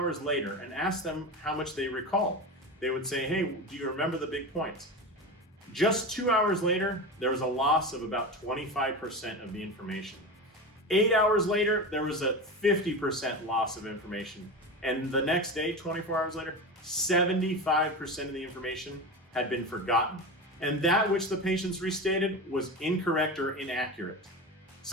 later and asked them how much they recalled. They would say, hey, do you remember the big points? Just 2 hours later, there was a loss of about 25% of the information. 8 hours later, there was a 50% loss of information. And the next day, 24 hours later, 75% of the information had been forgotten. And that which the patients restated was incorrect or inaccurate.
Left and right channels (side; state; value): both; normal; correlation 0.25